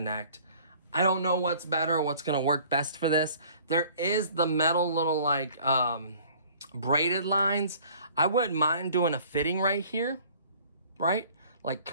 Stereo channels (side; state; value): both; inverted; correlation -0.52